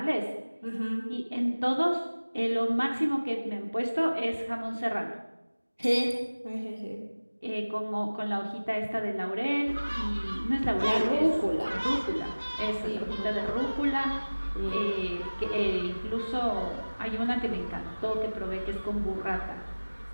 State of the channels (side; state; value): both; inverted; correlation -1.00